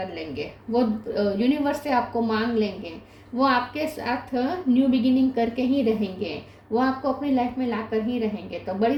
लेंगे। वो यूनिवर्स से आपको मांग लेंगे। वो आपके साथ न्यू बिगिनिंग करके ही रहेंगे। वो आपको अपनी लाइफ में ला कर ही रहेंगे। तो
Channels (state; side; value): identical; both; correlation 1.00